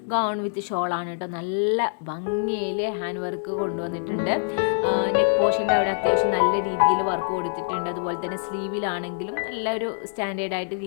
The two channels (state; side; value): silent; right; digital silence